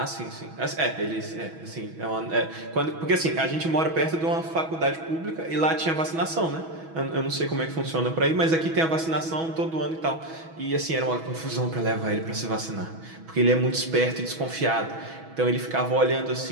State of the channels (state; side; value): late; left; 6.2 ms